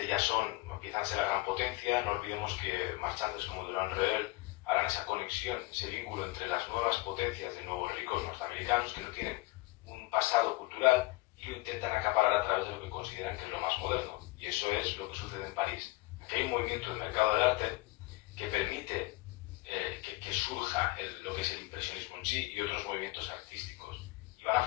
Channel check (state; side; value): quieter; right; 21.9 dB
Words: empiezan a ser la gran potencia. No olvidemos que marchantes como Durand Ruel harán esa conexión, ese vínculo entre las nuevas potencias de nuevos ricos norteamericanos que no tienen un pasado cultural y lo intentan acaparar a través de lo que consideran que es lo más moderno. Y eso es lo que sucede en París. Aquí hay un movimiento del mercado del arte que permite que surja lo que es el impresionismo en sí y otros movimientos artísticos. Y van a